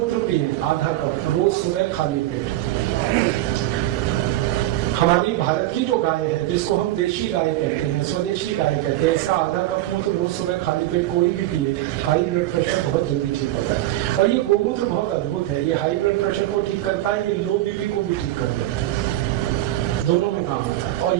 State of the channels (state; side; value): quieter; left; 15.2 dB